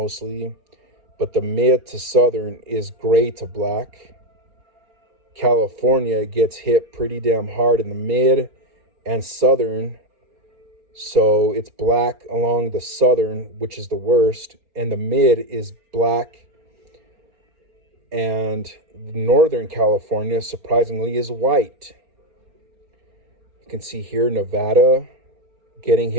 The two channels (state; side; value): late; left; 4.4 ms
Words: but the mid to southern is gray to black. California gets hit pretty damn hard in the mid and southern, so it's black along the southern, which is the worst, and the mid is black. And northern California, surprisingly, is white. You can see here Nevada getting